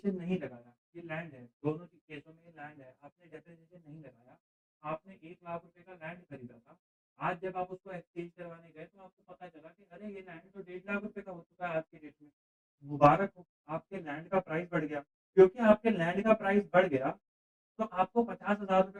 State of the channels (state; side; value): identical; both; correlation 1.00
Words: नहीं लगाया, ये लैंड है, दोनों की केसों में ये लैंड है, आपने डेप्रिसिएशन नहीं लगाया। आपने ₹1,00,000 का लैंड खरीदा था। आज जब आप उसको एक्सचेंज करवाने गए तो आपको पता चला कि अरे ये लैंड तो 1,50,000 का हो चुका है आज की डेट में। मुबारक हो, आपके लैंड का प्राइस बढ़ गया। क्योंकि आपके लैंड का प्राइस बढ़ गया तो आपको ₹50,000